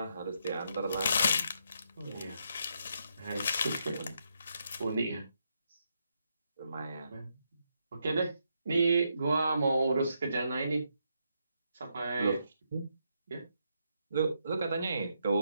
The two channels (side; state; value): both; inverted; correlation -0.79